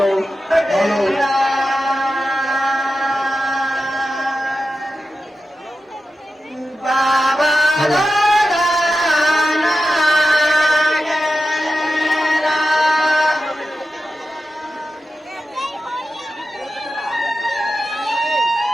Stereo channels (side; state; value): both; normal; correlation 0.92